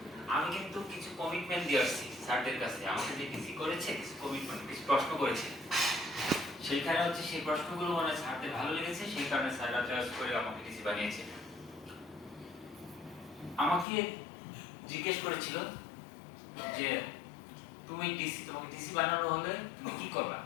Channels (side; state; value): right; drops out; at 13.9 s